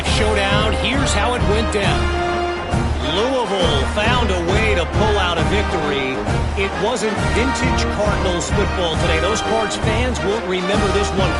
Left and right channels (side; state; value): both; identical; correlation 1.00